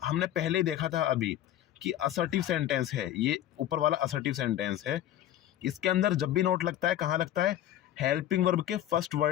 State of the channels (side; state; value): right; quieter; 12.2 dB